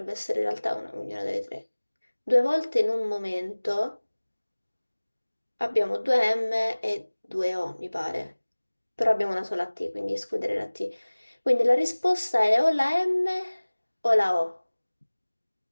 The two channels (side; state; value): both; inverted; correlation -1.00